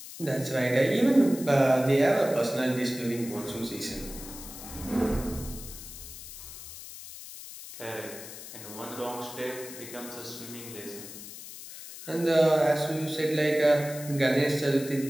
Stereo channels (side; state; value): left; noise; hiss, 13 dB below the sound